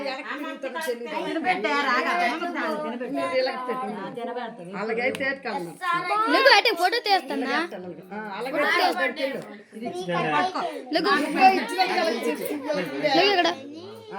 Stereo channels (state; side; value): identical; both; correlation 1.00